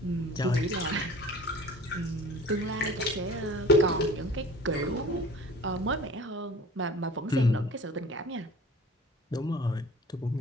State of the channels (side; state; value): both; normal; correlation 0.44